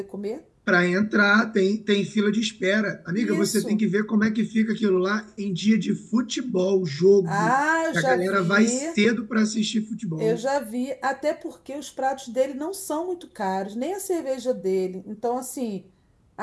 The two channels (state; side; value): identical; both; correlation 1.00